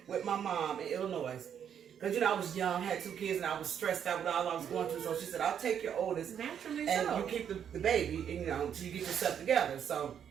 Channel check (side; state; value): left; quieter; 8.6 dB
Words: with my mom in Illinois. Because, I was young, had 2 kids, and I was stressed out with all I was going through. So she said, I'll take your oldest. Naturally and so. You keep the baby, and, until you get yourself together. So